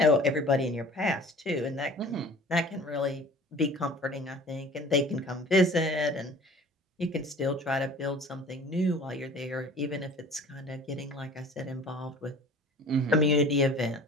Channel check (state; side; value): normal; both; correlation 0.45